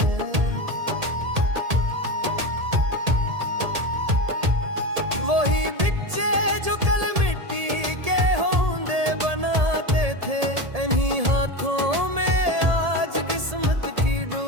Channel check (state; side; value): late; left; 1.8 ms